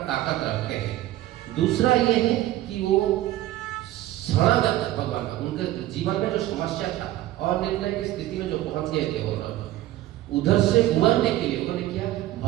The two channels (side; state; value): left; quieter; 14.8 dB